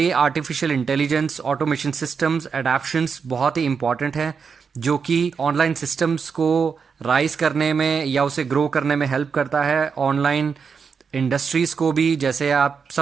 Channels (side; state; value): left; quieter; 5.9 dB